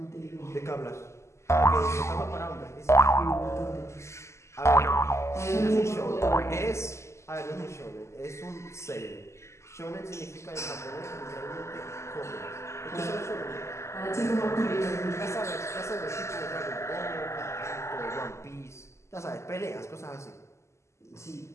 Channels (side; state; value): right; late; 0.13 ms